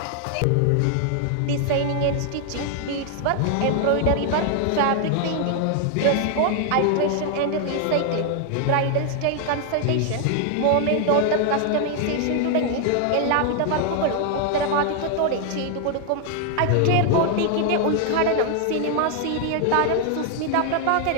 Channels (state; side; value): different; both; correlation 0.00